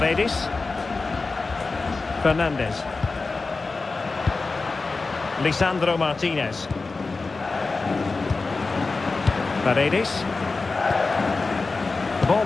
Fernandes. Lisandro Martinez. Paredes. The ball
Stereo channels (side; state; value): right; quieter; 3.9 dB